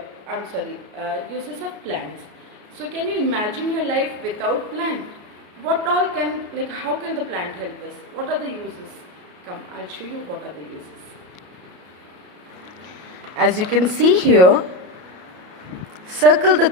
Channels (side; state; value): left; late; 33 ms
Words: uses of plants. So can you imagine your life without plant? What all can, how can the plant help us? What are the uses? Come, I'll show you what are the uses. As you can see here, circle the